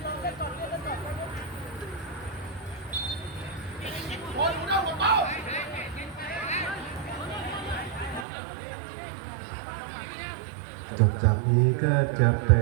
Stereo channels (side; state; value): left; drops out; at 8.2 s